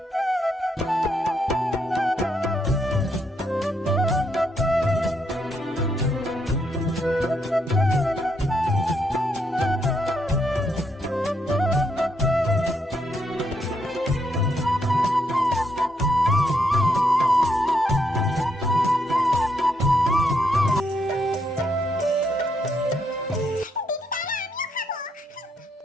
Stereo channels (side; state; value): both; normal; correlation 0.76